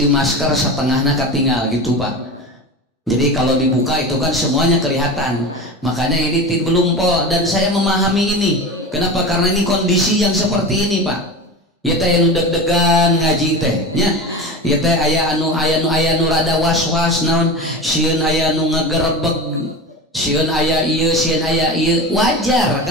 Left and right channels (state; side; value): normal; both; correlation 0.28